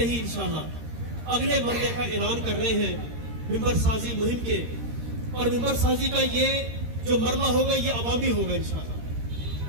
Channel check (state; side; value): late; left; 13 ms